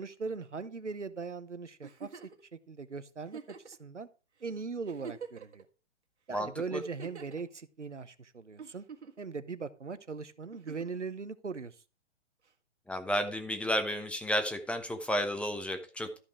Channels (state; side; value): normal; both; correlation 0.58